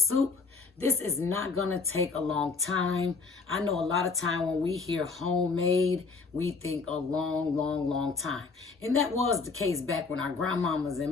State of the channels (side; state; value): right; quieter; 4.4 dB